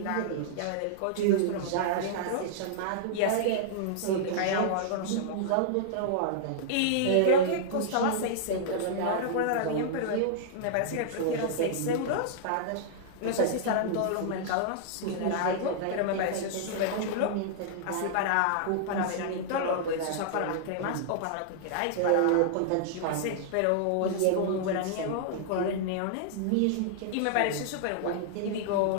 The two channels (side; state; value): both; different; correlation -0.01